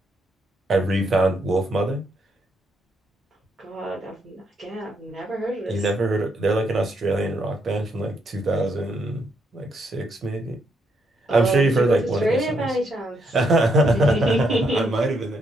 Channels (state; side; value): normal; both; correlation 0.76